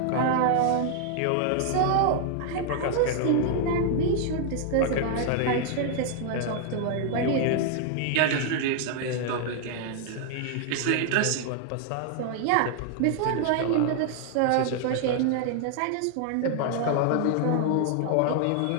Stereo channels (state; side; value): different; both; correlation 0.00